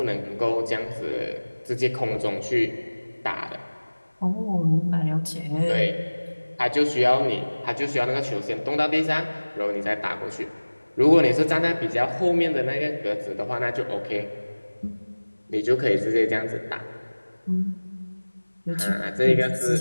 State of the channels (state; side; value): inverted; both; correlation -1.00